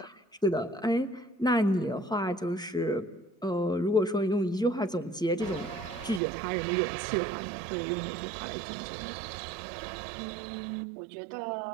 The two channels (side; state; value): left; drops out; at 6.2 s